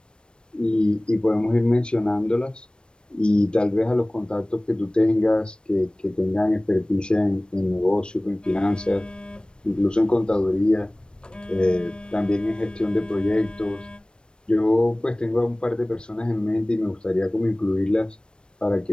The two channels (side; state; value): right; late; 0.054 ms